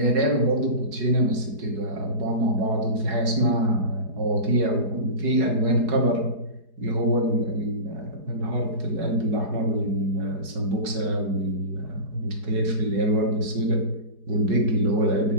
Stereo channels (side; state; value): left; late; 4.8 ms